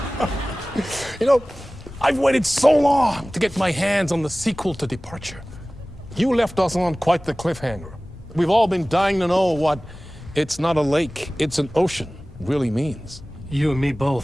You know, I've waited so long to get my hands on the sequel to Departure. You left us on quite the cliffhanger. We've all been dying to know what "it's not a lake, it's an ocean" really means. You and me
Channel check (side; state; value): both; normal; correlation 0.98